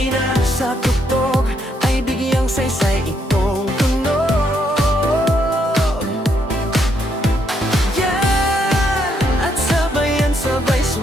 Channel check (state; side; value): normal; both; correlation 0.75